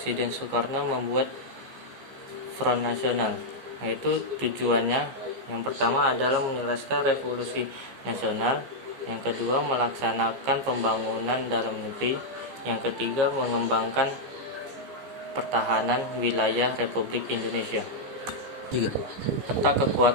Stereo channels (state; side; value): late; left; 15 ms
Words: Soekarno membuat Front Nasional, yaitu tujuannya yang pertama adalah menyelesaikan revolusi nasional, yang kedua melaksanakan pembangunan dalam negeri, yang ketiga mengembangkan pertahanan wilayah Republik Indonesia. 3. Peta